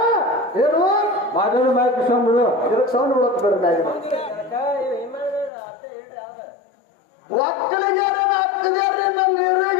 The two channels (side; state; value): right; drops out; at 5.5 s